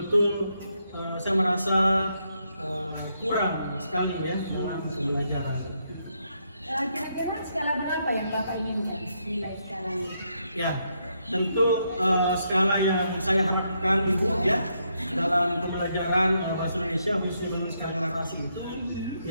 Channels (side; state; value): both; inverted; correlation -0.78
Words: saya merasa kurang sekali ya dalam pembelajaran. Kira-kira skala berapa yang Bapak inginkan nilai skalanya? Ya, tentu skala yang saya harapkan Ibu ya dalam pembelajaran bahasa Indonesia khususnya skala narasi itu